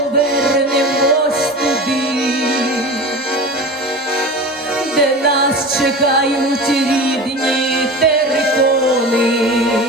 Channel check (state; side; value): normal; both; correlation 0.32